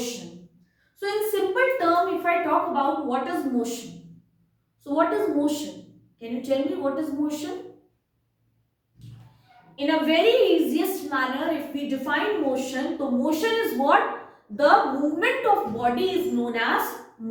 So, in simple term, if I talk about what is motion. So, what is motion? Can you tell me what is motion? In a very easiest manner, if we define motion, so motion is what? The movement of body is known as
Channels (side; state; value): both; identical; correlation 1.00